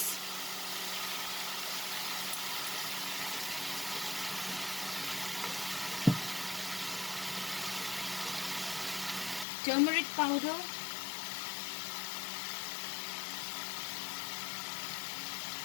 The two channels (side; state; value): right; drops out; at 9.5 s